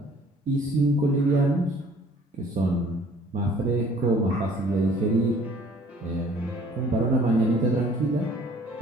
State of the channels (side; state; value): both; normal; correlation 0.55